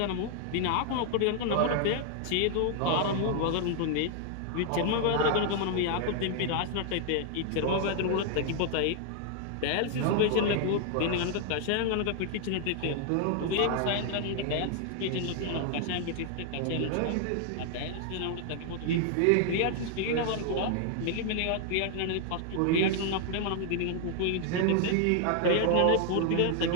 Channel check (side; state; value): both; different; correlation 0.00